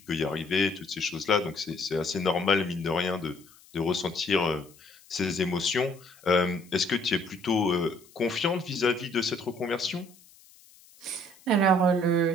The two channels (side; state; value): left; noise; hiss, 26 dB below the sound